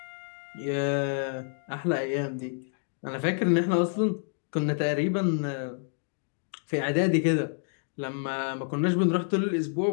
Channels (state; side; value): silent; right; digital silence